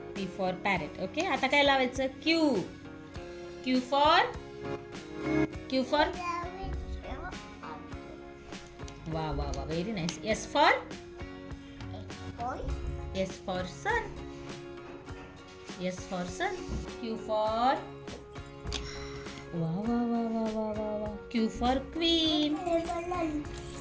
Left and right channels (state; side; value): identical; both; correlation 1.00